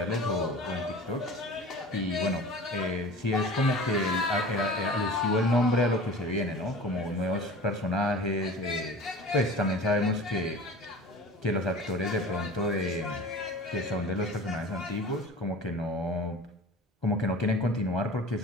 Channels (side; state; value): both; normal; correlation 0.39